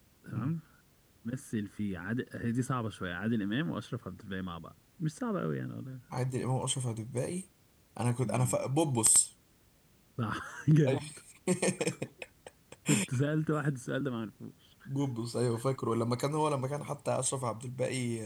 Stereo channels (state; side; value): identical; both; correlation 1.00